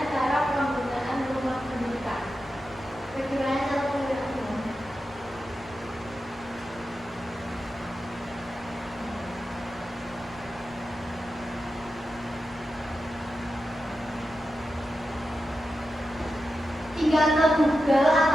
cara penggunaan rumah pendidikan? Bagaimana cara penggunaan? Tinggal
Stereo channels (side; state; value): right; noise; rumble, 22 dB below the sound